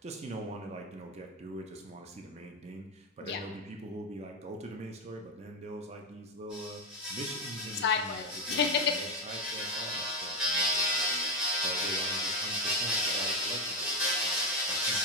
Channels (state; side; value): normal; both; correlation 0.09